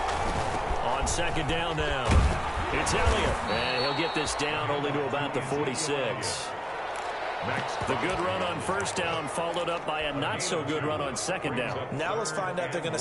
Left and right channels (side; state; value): both; identical; correlation 1.00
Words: On 2nd down now, it's Elliott. And he'll get this down only to about the 46. The good run on 1st down followed up by a not-so-good run on 2nd down. Now let's find out if they're going to